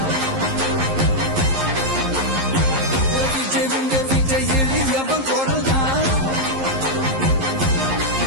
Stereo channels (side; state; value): left; late; 11 ms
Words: விஜய் உங்க விஜய் எளியவன் குரல்தான்